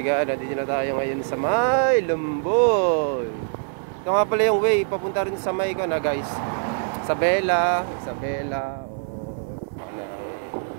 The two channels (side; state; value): left; silent; 57 dB below the other